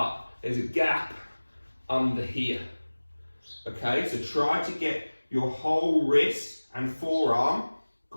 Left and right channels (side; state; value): both; inverted; correlation -1.00